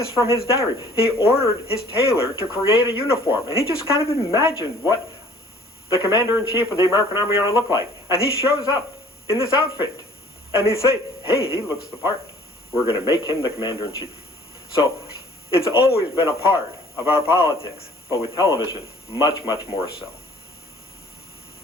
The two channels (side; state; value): both; normal; correlation 0.53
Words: from his diary, he ordered his tailor to create a uniform, and he just kind of imagined what the commander-in-chief of the American Army ought to look like. And he shows up in this outfit, and he say, hey, he looks the part. We're going to make him the commander-in-chief. So it's always been a part of our politics, but with television, much, much more so.